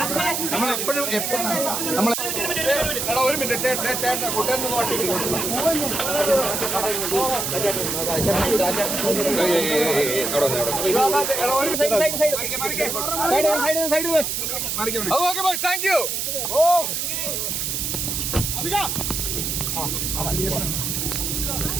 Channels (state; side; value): noise; right; hiss, 1 dB below the sound